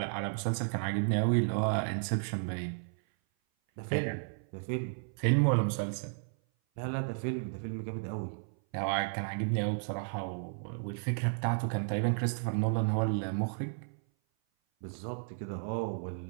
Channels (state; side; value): silent; left; 56 dB below the other